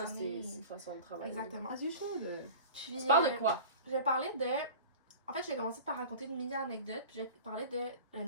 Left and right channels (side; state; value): both; inverted; correlation -0.38